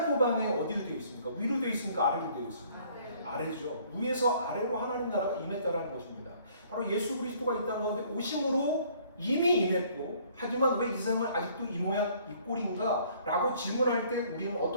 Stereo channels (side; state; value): both; inverted; correlation -0.59